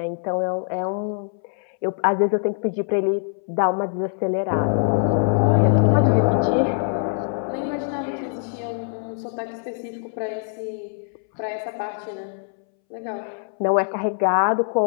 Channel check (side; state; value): right; silent; 63 dB below the other